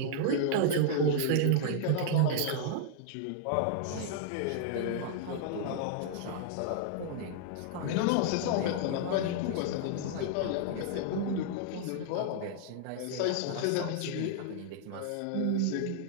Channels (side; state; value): both; different; correlation 0.00